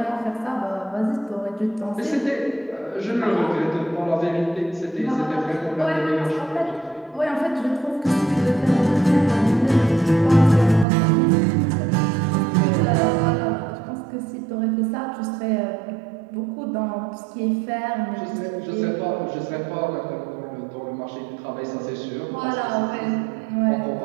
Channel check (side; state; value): left; drops out; at 10.9 s